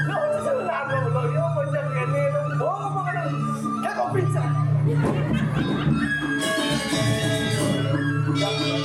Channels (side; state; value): both; identical; correlation 1.00